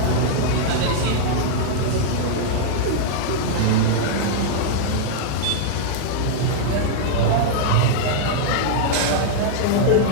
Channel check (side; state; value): both; different; correlation -0.02